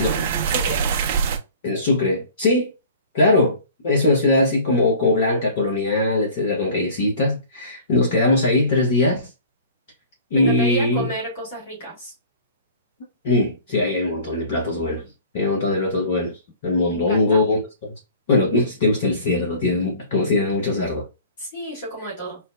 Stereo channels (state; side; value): inverted; both; correlation -0.44